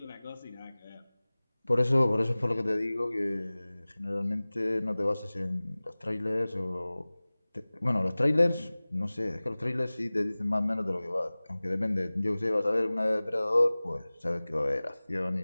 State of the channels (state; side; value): inverted; both; correlation -0.99